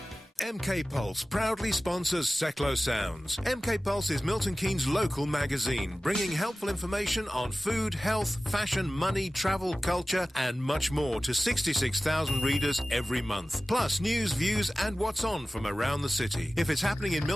MK Pulse proudly sponsors Seclo Sounds. MK Pulse is Milton Keynes' local magazine, bringing helpful information on food, health, fashion, money, travel, culture, and much more to 66,000 readers every month. Plus news, views, and what's on from around the city. If it's happening in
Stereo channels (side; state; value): both; normal; correlation 0.96